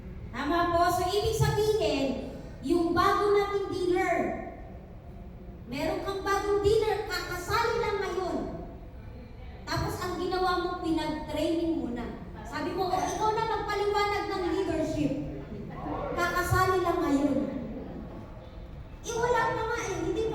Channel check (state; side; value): identical; both; correlation 1.00